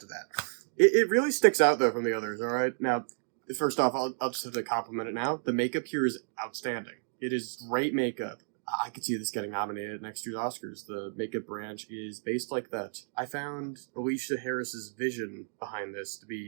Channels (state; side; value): silent; left; digital silence